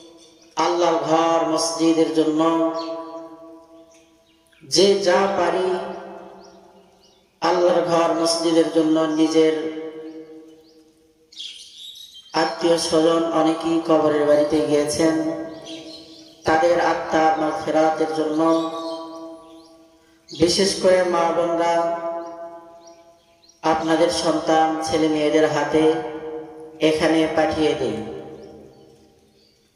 আল্লাহর ঘর মসজিদের জন্য যে যা পারি আল্লাহর ঘর মসজিদের জন্য নিজের আত্মীয় স্বজন অনেকেই কবরের বাড়িতে গিয়েছেন, তাদের আত্মার মাগফিরাতের জন্য বিশেষ করে মা বোনরা আপনাদের সন্তান ছেলে মেয়েদের হাতে এখানে পাঠিয়ে দিন।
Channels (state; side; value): identical; both; correlation 1.00